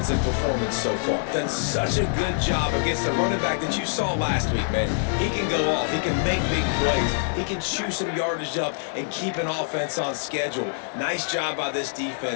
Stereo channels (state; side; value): silent; right; 62 dB below the other